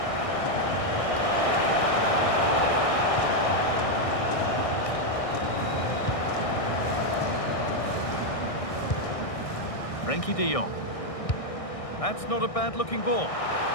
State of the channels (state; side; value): late; right; 1.6 ms